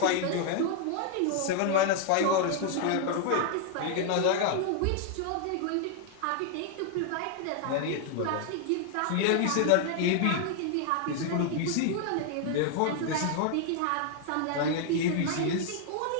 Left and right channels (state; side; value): different; both; correlation 0.00